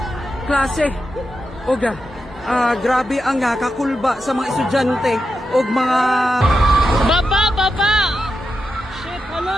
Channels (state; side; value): normal; both; correlation 0.88